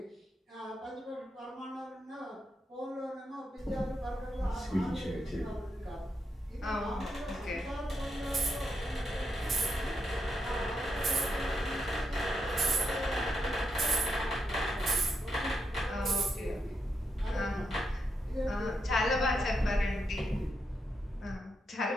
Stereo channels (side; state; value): both; normal; correlation 0.82